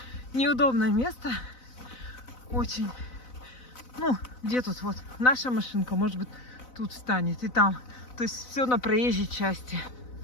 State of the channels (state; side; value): late; right; 4.0 ms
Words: Неудобное место. Очень. Ну, где тут вот наша машинка, может быть, тут встанет и там. То есть все на проезжей части.